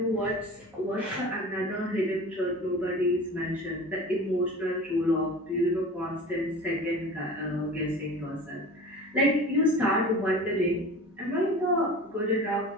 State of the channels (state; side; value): normal; both; correlation 0.37